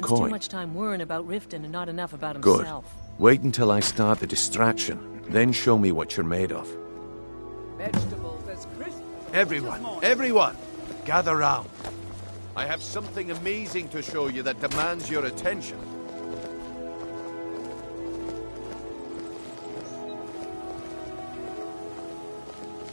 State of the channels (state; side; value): inverted; both; correlation -1.00